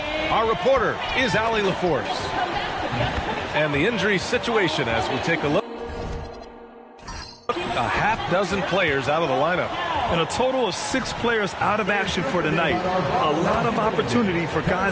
Our reporter is Allie LaForce. And the injury situation as we take a look. A half dozen players out of the lineup. And a total of 6 players out of action for tonight. A lot of opportunity for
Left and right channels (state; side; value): identical; both; correlation 1.00